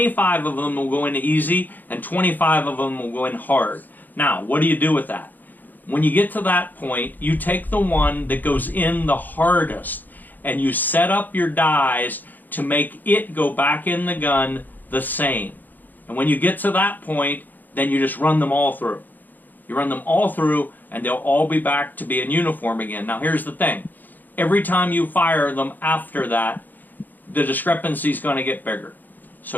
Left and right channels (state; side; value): late; right; 0.086 ms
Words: of them will go in easy, and 25 of them will go in hard. Now, what do you do with that? When you get to that point, you take the one that goes in the hardest, and you set up your dies to make it go back in the gun the same. And when you get to that point, then you just run them all through. You run them all through, and they'll all be back to being uniform again. Now here's the thing. Every time you fire them after that, the discrepancy is going to get bigger.